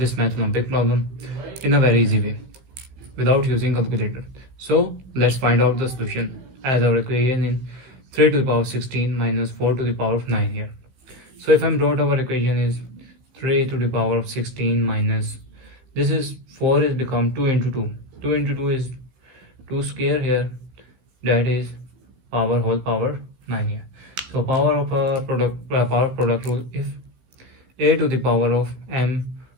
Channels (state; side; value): late; left; 16 ms